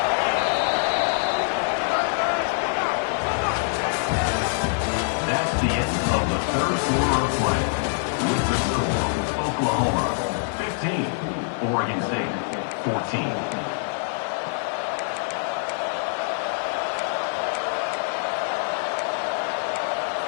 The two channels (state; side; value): silent; right; digital silence